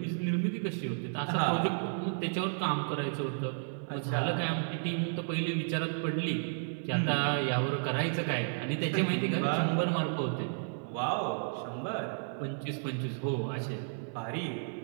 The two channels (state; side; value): silent; left; 56 dB below the other